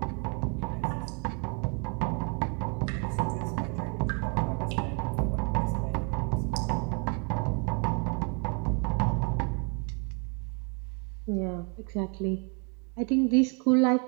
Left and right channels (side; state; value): left; quieter; 37.0 dB